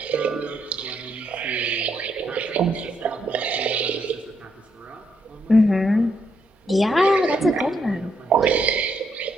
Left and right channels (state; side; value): normal; both; correlation 0.77